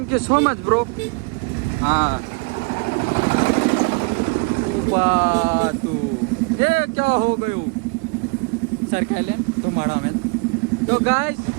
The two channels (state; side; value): quieter; left; 31.8 dB